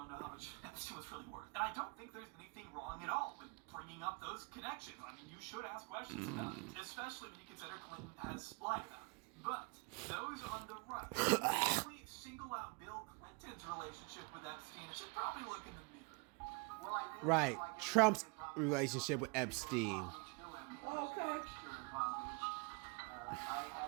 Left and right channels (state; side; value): quieter; left; 30.6 dB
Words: know how much Epstein was really worth. And I don't think there's anything wrong at all with bringing up those connections. I mean, you should ask questions about it, especially when you consider Clinton has lied about it. But those on the right who only single out Bill Clinton's relationship with Epstein should probably look in the mirror. Right. Trump's relationship with Epstein. Okay. I